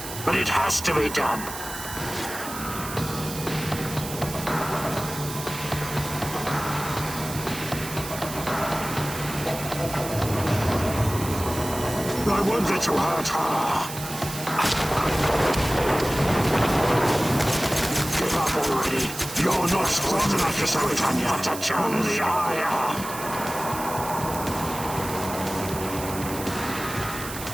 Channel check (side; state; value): right; noise; hiss, 10 dB below the sound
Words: but it has to be done. I won't let you hurt her. Give up already. You're not strong enough to show it on your Tatiana. I am.